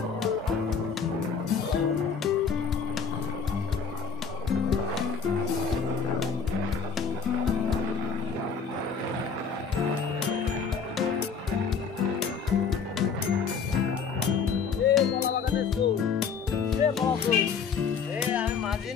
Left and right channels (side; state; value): right; quieter; 5.9 dB